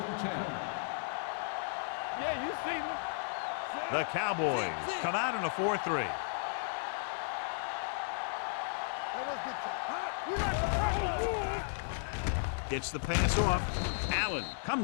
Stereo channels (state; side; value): silent; right; 55 dB below the other